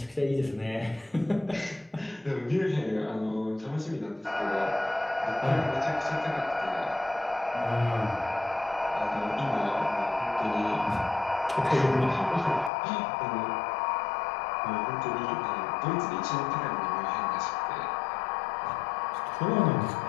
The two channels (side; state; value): right; drops out; at 12.7 s